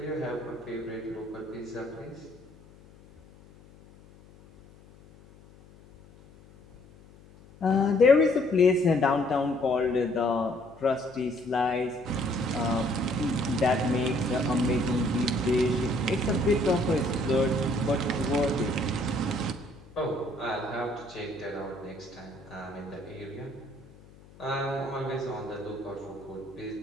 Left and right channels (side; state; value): left; noise; hum, 24 dB below the sound